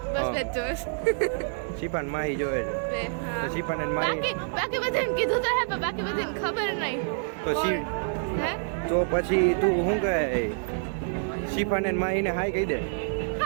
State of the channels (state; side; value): silent; left; digital silence